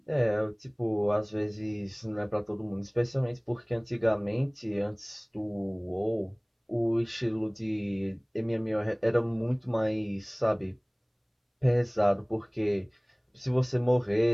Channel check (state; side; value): identical; both; correlation 1.00